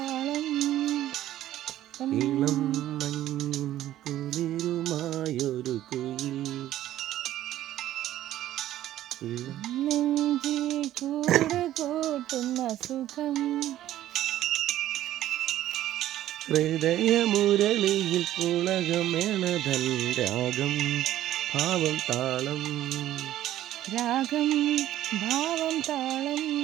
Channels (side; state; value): left; quieter; 13.3 dB